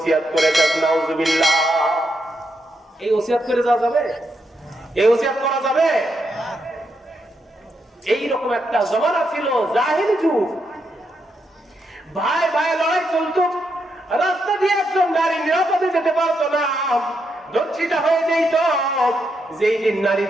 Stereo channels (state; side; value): normal; both; correlation 0.81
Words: করে যাস। নাউজুবিল্লাহ। এই ওসিয়াত করে যাওয়া যাবে? এই ওসিয়াত করা যাবে? এইরকম একটা জমানা ছিল, জাহেলি যুগ। ভাই ভাই লড়াই চলতো, রাস্তা দিয়ে একজন নারী নিরাপদে যেতে পারতো না, দর্শিতা হয়ে যেত। যেই দিন